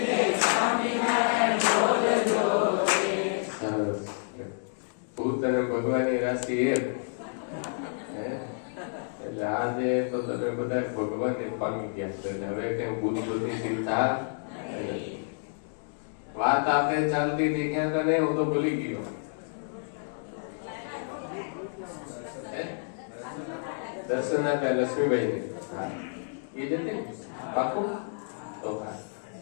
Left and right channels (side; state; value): right; silent; digital silence